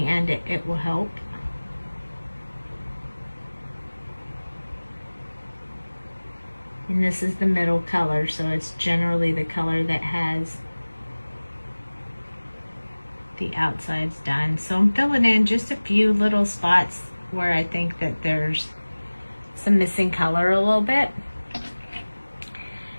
end it will help. And this is the middle color, so it's generally the color that has the outsides done. So I'm filling in just a few little spots where I think that there's some missing color a little bit.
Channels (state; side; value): inverted; both; correlation -1.00